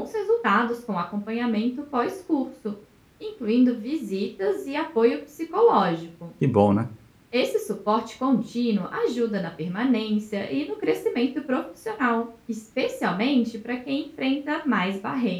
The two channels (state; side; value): identical; both; correlation 1.00